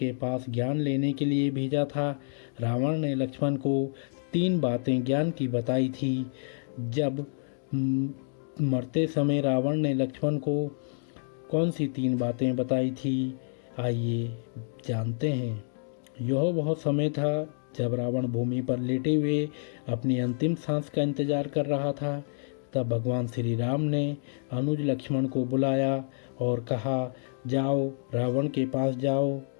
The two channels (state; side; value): silent; right; digital silence